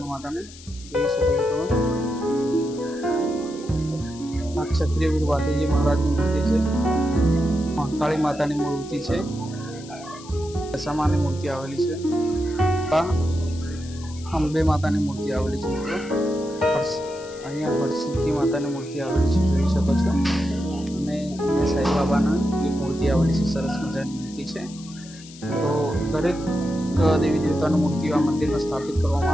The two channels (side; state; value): left; noise; hiss, 19 dB below the sound